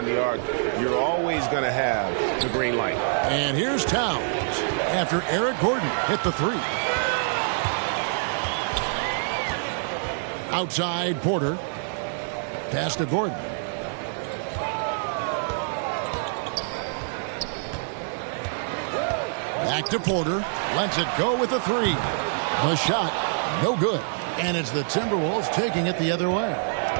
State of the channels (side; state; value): left; silent; digital silence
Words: the arc, you're always going to have the green light. And here's Towns after Eric Gordon hit the 3. Outside, Porter. Pass to Gordon. Back to Porter. Lets it go with a 3. The shot, no good. And it's the Timberwolves taking it the other way.